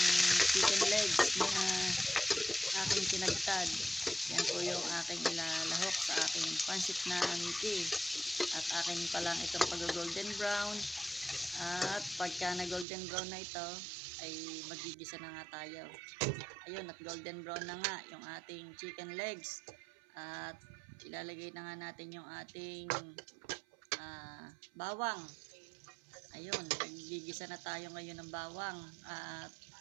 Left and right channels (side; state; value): left; drops out; at 12.9 s